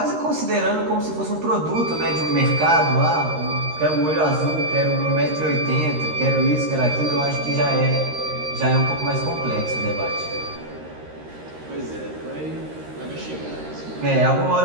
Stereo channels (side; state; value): left; late; 13 ms